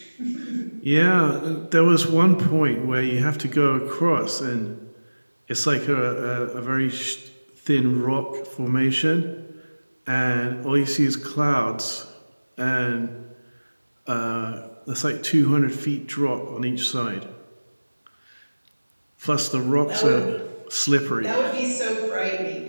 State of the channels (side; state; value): both; inverted; correlation -1.00